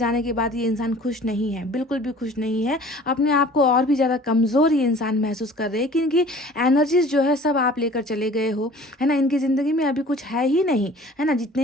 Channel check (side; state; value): both; normal; correlation 0.47